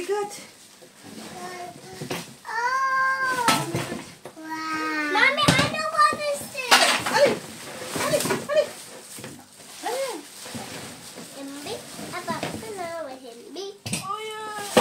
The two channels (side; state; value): both; identical; correlation 1.00